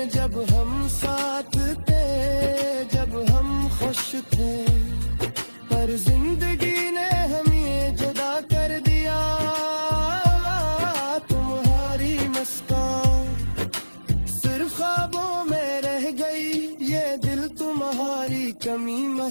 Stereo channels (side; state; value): both; inverted; correlation -1.00